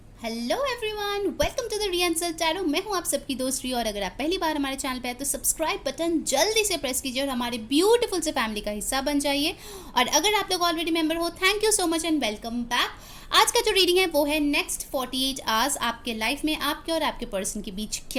Hello everyone, welcome to the रियंसल tarot. मैं हूं आप सबकी दोस्त रिया और अगर आप पहली बार हमारे चैनल पे हैं तो सब्सक्राइब बटन जल्दी से प्रेस कीजिए और हमारे ब्यूटीफुल से फैमिली का हिस्सा बन जाइए। और अगर आप लोग ऑलरेडी मेंबर हो, thank you so much and welcome back. आज का जो रीडिंग है वो है नेक्स्ट 48 आवर्स आपके लाइफ में आपके और आपके पर्सन के बीच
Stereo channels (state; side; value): identical; both; correlation 1.00